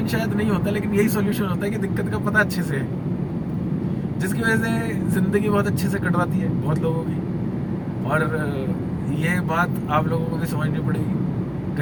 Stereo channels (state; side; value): identical; both; correlation 1.00